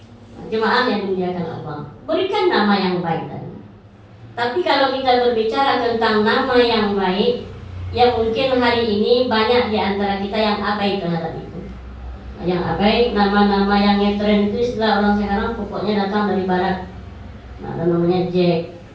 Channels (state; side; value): identical; both; correlation 1.00